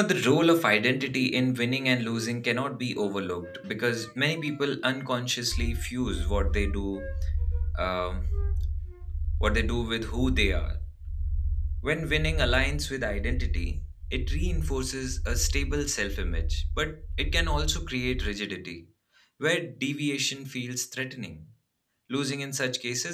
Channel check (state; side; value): identical; both; correlation 1.00